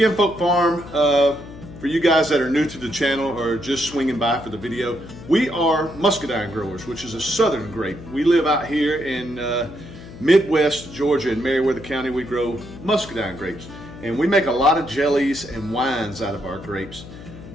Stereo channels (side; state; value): left; noise; hum, 15 dB below the sound